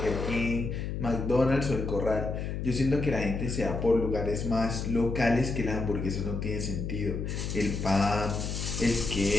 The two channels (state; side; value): noise; left; hum, 4 dB below the sound